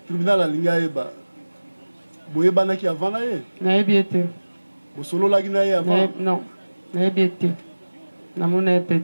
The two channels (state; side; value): inverted; both; correlation -1.00